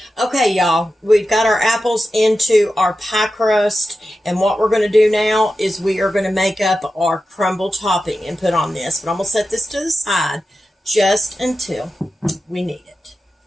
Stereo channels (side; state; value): both; normal; correlation 0.92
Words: Okay, y'all, we've got our apples into our pie crust, and what we're going to do now is we are going to make up our crumble topping and put on this. But I'm going to set this to the side just until we need it.